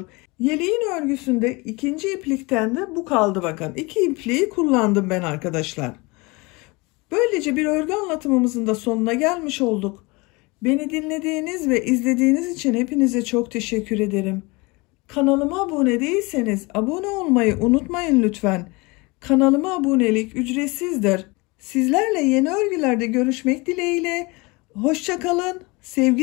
Yeleğin örgüsünde ikinci iplikten de bu kaldı bakın. 2 ipliği kullandım ben arkadaşlar. Böylece bir örgü anlatımımızın da sonuna gelmiş olduk. Beni dinlediğiniz ve izlediğiniz için hepinize çok teşekkür ederim. Kanalıma abone değilseniz abone olmayı unutmayın lütfen. Kanalıma abonelik ücretsizdir. Sizlerle yeni örgülerde görüşmek dileğiyle. Hoşça kalın,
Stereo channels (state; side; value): quieter; right; 25.8 dB